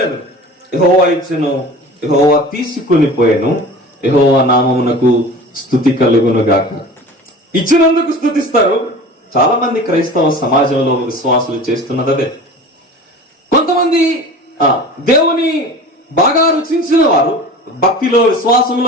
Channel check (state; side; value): normal; both; correlation 0.38